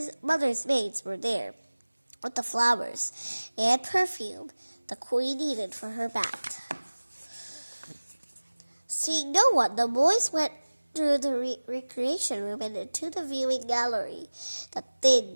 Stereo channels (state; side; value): inverted; both; correlation -1.00